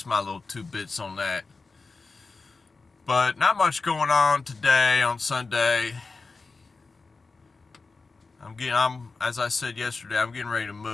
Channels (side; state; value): right; quieter; 4.0 dB